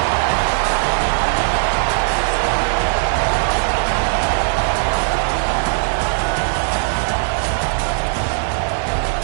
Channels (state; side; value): silent; left; digital silence